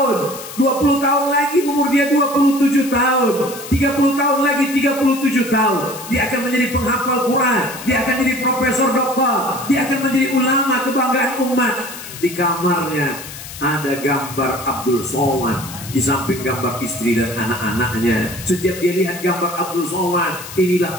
20 tahun lagi umur dia 27 tahun, 30 tahun lagi 37 tahun. Dia akan menjadi penghafal Quran, dia akan jadi profesor doktor, dia akan menjadi ulama kebanggaan umat. Di kamarnya ada gambar Abdul Somad, di samping gambar istri dan anak-anaknya. Setiap dia lihat gambar Abdul Somad, inilah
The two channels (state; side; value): noise; left; hiss, 13 dB below the sound